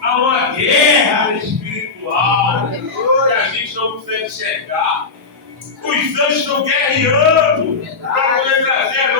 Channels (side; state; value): right; quieter; 4.4 dB